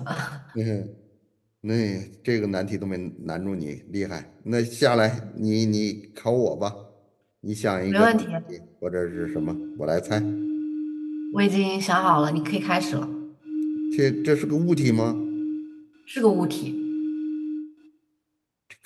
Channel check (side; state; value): both; identical; correlation 1.00